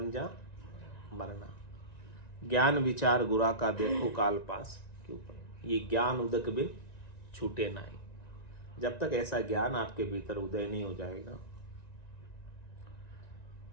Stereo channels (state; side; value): late; right; 1.9 ms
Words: जहाँ मरना। ज्ञान विचार गुरा का देखो काल पास क्यों पर, ये ज्ञान उदक बिन छूटे नहीं। जब तक ऐसा ज्ञान आपके भीतर उदय नहीं हो जाएगा